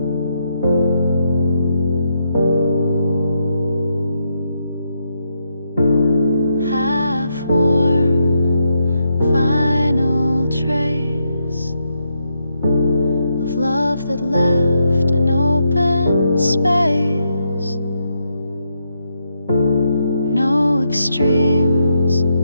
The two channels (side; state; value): both; inverted; correlation -0.81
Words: That left an open space, no extremes,